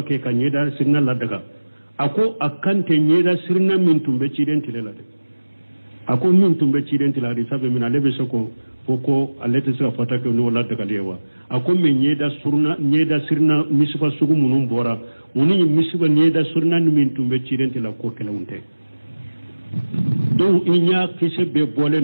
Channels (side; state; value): both; inverted; correlation -1.00